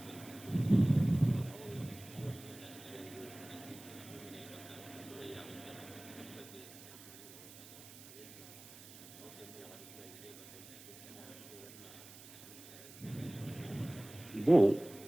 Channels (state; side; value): noise; right; hiss, 17 dB below the sound